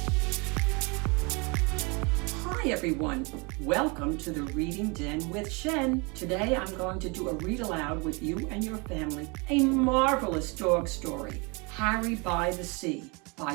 Hi everyone, welcome to the Reading Den with Shen. Today I'm going to do a read aloud with you and your family. A marvelous dog story, Harry by the Sea,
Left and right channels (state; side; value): quieter; left; 29.8 dB